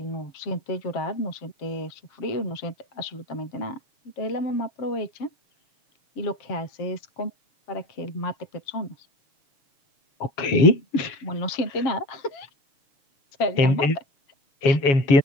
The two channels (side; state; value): right; late; 7.2 ms